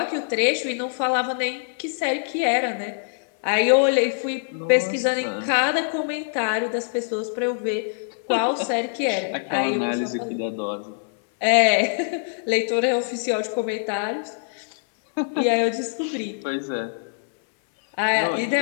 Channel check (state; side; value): silent; right; 61 dB below the other